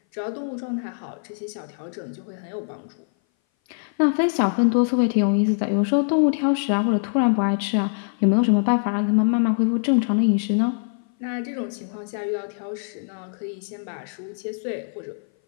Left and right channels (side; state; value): right; silent; 59 dB below the other